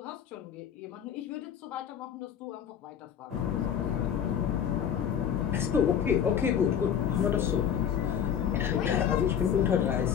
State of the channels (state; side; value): quieter; right; 8.7 dB